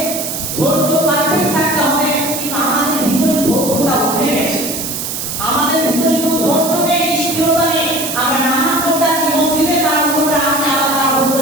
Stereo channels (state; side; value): noise; right; hiss, 5 dB below the sound